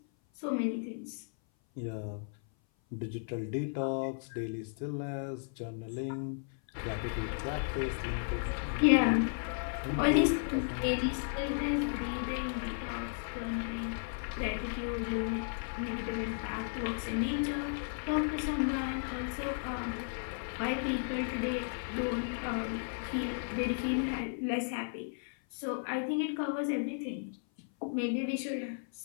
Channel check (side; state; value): right; silent; 55 dB below the other